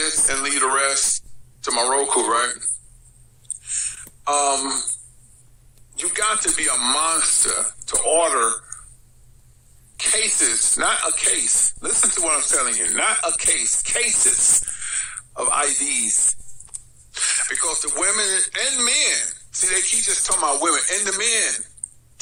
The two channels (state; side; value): identical; both; correlation 1.00